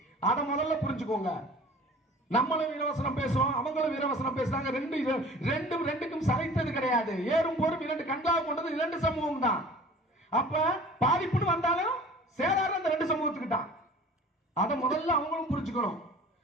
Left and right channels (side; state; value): both; normal; correlation 0.45